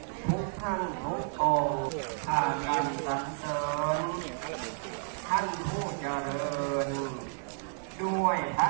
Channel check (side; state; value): left; silent; digital silence